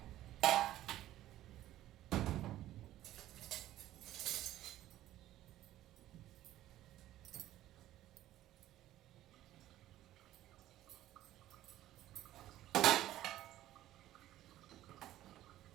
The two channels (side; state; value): left; quieter; 14.0 dB